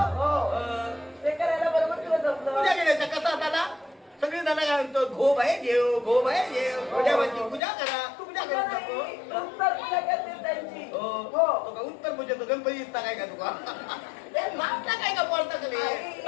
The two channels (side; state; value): right; drops out; at 7.6 s